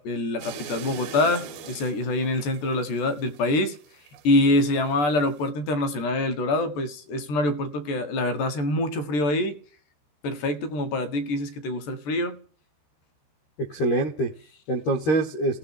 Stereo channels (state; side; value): late; right; 14 ms